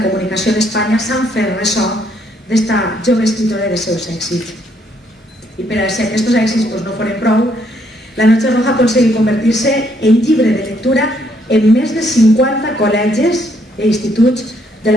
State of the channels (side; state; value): both; normal; correlation 0.70